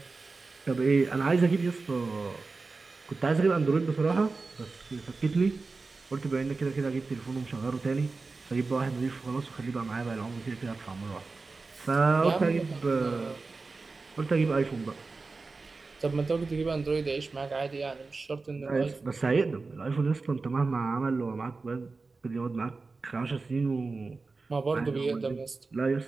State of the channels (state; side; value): quieter; left; 3.9 dB